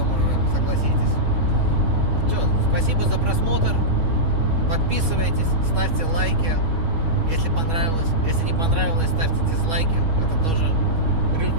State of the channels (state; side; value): late; left; 6.2 ms